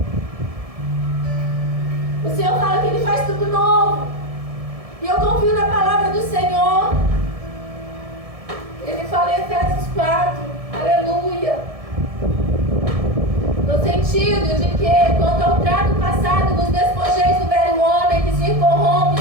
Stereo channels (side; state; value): left; late; 1.7 ms